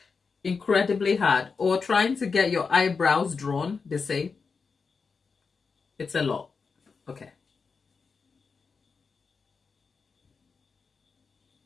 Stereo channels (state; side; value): quieter; right; 5.0 dB